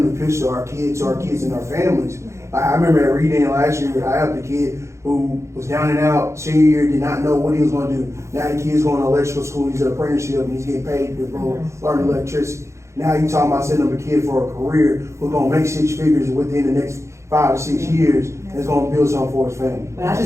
to push to our kids and our families. Like, I remember at reading last year, I helped a kid who was down and out, senior year, did not know what he was gonna do. Now the kid's going to electrical school, he's an apprenticeship, and he's getting paid to go learn electricity. Now you talking about sending up a kid for a career who's gonna make 6 figures within the next 5 to 6 years, and is gonna build something for his family. But I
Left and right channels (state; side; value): late; left; 0.14 ms